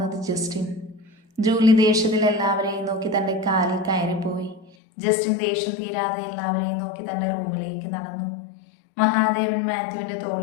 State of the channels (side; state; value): right; drops out; at 4.7 s